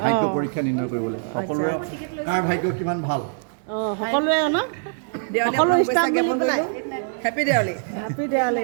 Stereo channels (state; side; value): silent; left; digital silence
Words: ভাগ্য পৰীক্ষা নিৰ্ণয় কৰিবলৈ সকলোৰে কাৰ ভাগ্য কিমান ভাল সকলোৱে ন সকলো ষ্টাফ মিলি পেলাই happy Diwali happy Diwali